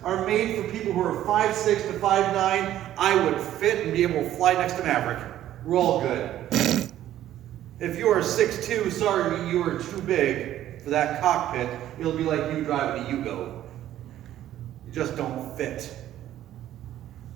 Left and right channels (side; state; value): left; quieter; 12.6 dB